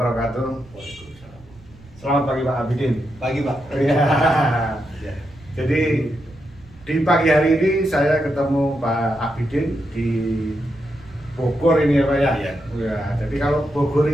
Waalaikumsalam. Selamat pagi Pak Abidin. Pagi Pak. Iya. Ya. Jadi di pagi hari ini saya ketemu Pak Abidin di Bogor ini ya Pak ya. Iya. Ya, jadi kalau Bogor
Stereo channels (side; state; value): right; noise; rumble, 24 dB below the sound